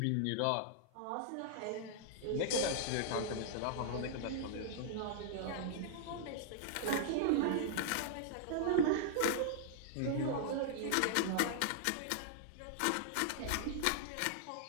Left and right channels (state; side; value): different; both; correlation -0.01